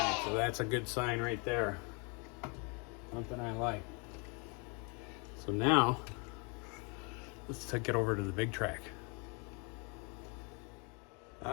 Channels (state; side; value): quieter; right; 33.4 dB